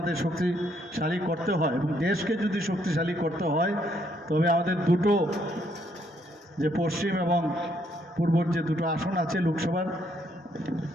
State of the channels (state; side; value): normal; both; correlation 0.71